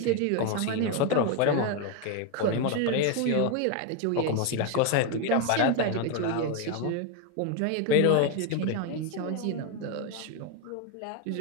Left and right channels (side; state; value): both; different; correlation 0.01